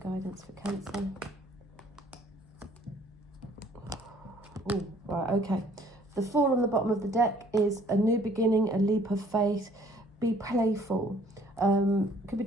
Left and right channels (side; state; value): both; normal; correlation 0.58